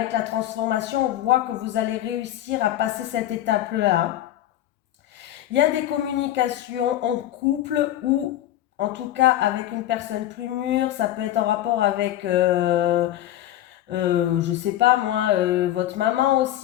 la transformation, on voit que vous allez réussir à passer cette étape-là. Il y a des communications en couple ou en tout cas avec une personne plus mûre. Ça peut être en rapport avec, je sais pas moi, votre maman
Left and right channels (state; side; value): quieter; right; 13.1 dB